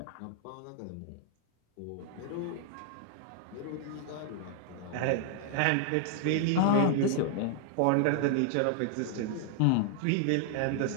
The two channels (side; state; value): both; different; correlation 0.00